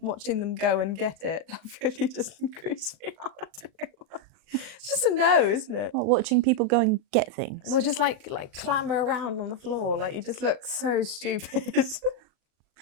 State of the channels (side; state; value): left; late; 38 ms